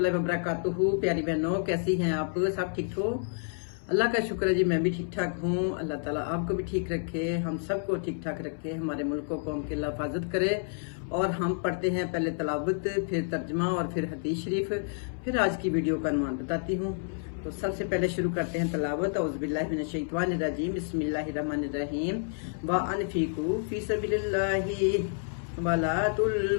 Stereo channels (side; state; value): right; silent; 58 dB below the other